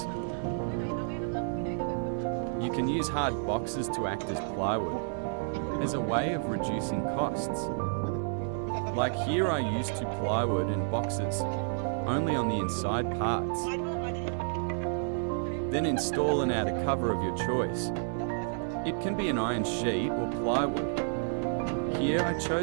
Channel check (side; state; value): left; silent; digital silence